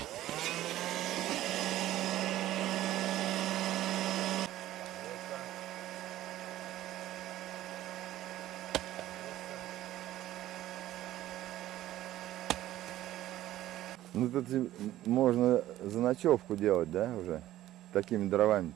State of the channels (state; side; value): quieter; left; 14.1 dB